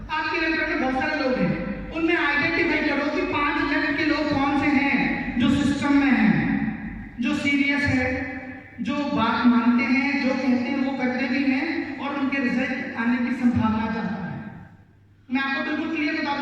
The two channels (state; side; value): identical; both; correlation 1.00